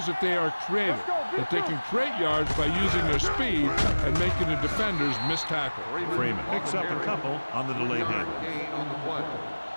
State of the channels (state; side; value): inverted; both; correlation -1.00